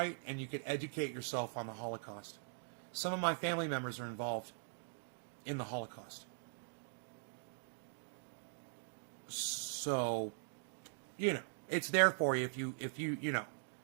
and you could educate yourself on the Holocaust. Some of my family members are involved in the Holocaust. So, you know, it's there for you if you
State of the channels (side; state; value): left; silent; digital silence